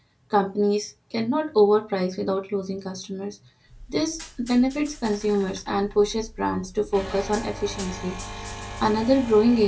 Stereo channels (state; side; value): identical; both; correlation 1.00